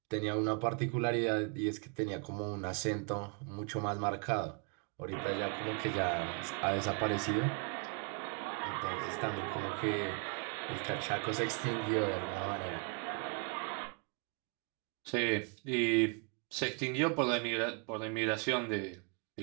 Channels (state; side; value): quieter; left; 35.0 dB